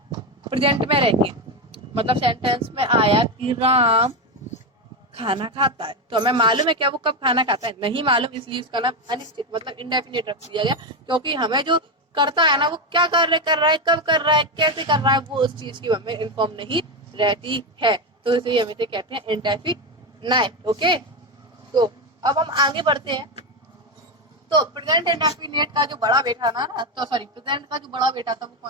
प्रेजेंट में रह के, मतलब सेंटेंस में आया कि राम खाना खाता है, तो हमें मालूम है क्या वो कब खाना खाता है? नहीं मालूम, इसलिए उसका नाम अनिश्चित मतलब इंडेफिनिट रख दिया गया। क्योंकि हमें जो करता है ना वो क्या कार्य कर रहा है, कब कर रहा है, कैसे कर रहा है, वो उस चीज की हमें इन्फॉर्म नहीं रहती है। तो इसे हम इसे कहते हैं इंडेफिनाइट। ओके, तो अब हम आगे बढ़ते हैं। तो प्रेजेंट इंडेफिनिट का जो बड़ा बेटा ना तो सॉरी प्रेजेंट का जो बड़ा बेटा था वो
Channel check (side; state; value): both; normal; correlation 0.11